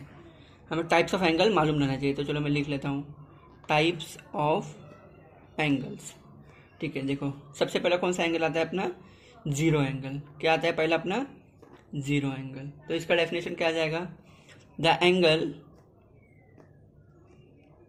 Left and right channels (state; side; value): identical; both; correlation 1.00